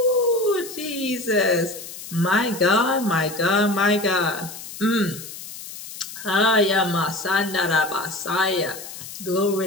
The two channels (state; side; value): noise; left; hiss, 12 dB below the sound